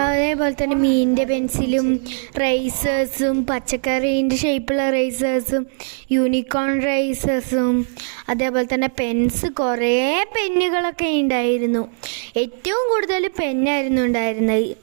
തന്നെ മീനിൻ്റെ പെൻസിലും റൈസേഴ്സും പച്ചക്കറീൻ്റെ ഷേപ്പുള്ള റൈസേഴ്സും യൂണിക്കോൺ റൈസേഴ്സും അതേപോലെ തന്നെ കുറേ പെന്നുകളൊക്കെ ഉണ്ടായിരുന്നു. ഏറ്റവും കൂടുതൽ പെന്നായിരുന്നു ഉണ്ടായിരുന്നത്.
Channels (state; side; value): silent; left; 66 dB below the other